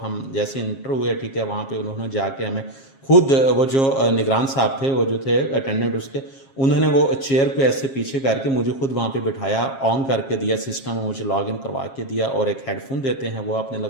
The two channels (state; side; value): late; right; 7.4 ms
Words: जैसे इंटर हुए, ठीक है, वहाँ पे उन्होंने जाके हमें खुद वो जो निगरान साहब थे, वो जो थे अटेंडेंट उसके, उन्होंने वो चेयर को ऐसे पीछे करके मुझे खुद वहाँ पे बिठाया, ऑन करके दिया सिस्टम, मुझे लॉगिन करवा के दिया, और एक हेडफोन देते हैं वो आपने